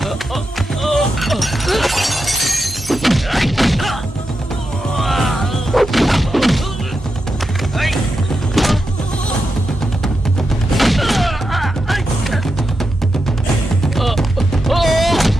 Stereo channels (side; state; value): both; normal; correlation 0.87